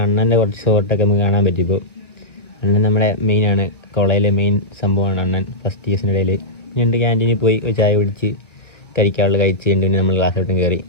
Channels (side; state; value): right; late; 1.0 ms